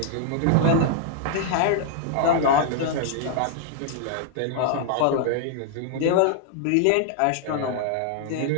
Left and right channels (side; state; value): both; different; correlation 0.00